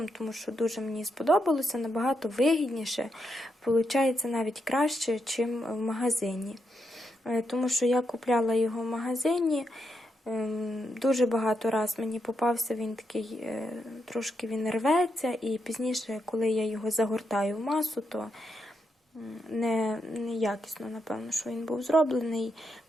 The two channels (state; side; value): normal; both; correlation 0.82